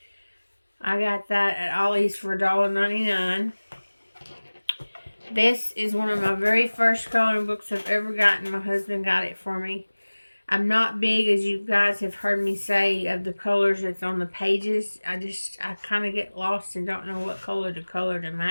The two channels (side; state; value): both; inverted; correlation -1.00